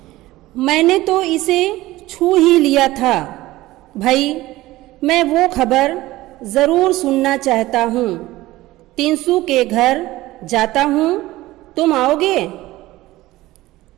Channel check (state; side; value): quieter; left; 17.5 dB